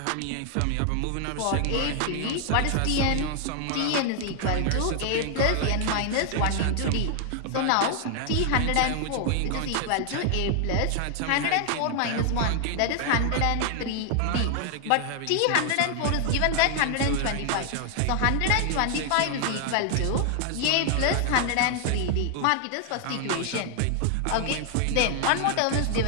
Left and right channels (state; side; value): different; both; correlation 0.00